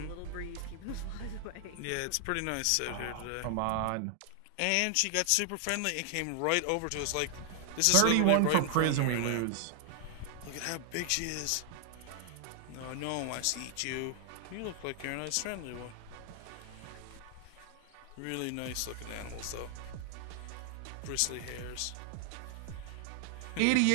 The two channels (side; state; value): both; different; correlation 0.00